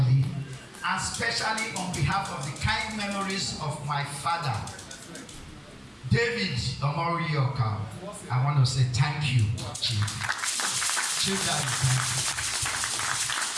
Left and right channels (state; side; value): identical; both; correlation 1.00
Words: and especially on behalf of the kind memories of my father, David Omorioka, I want to say thank you, Chief. Chief Daddy, thank you.